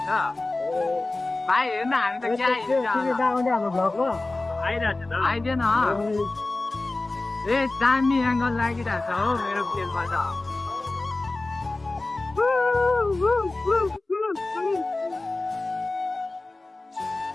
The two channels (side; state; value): right; quieter; 3.1 dB